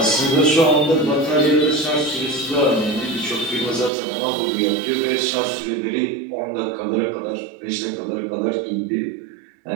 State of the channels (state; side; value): drops out; left; at 3.9 s